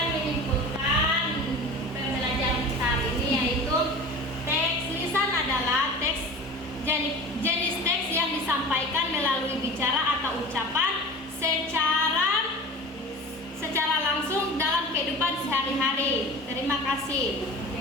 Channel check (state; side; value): normal; both; correlation 0.36